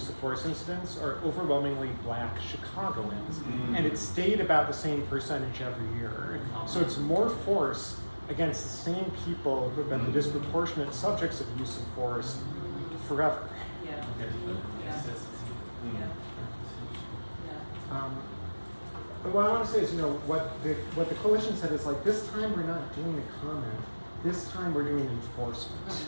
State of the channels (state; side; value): inverted; both; correlation -1.00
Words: of force incidents are overwhelmingly black Chicagoans, and it stayed about the same percentage every year. So it's more force against the same people who have been the disproportionate subjects of use of force forever. Yeah. But what I want to say is, you know, what the coalition said is like, this time we're not doing a comment. This time we're doing enforcement.